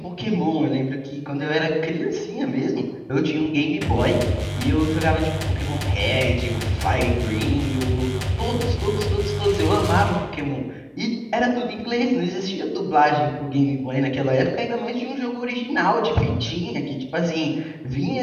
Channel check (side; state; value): both; identical; correlation 1.00